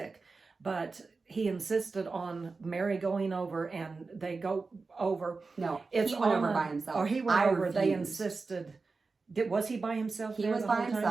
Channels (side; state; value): left; quieter; 4.1 dB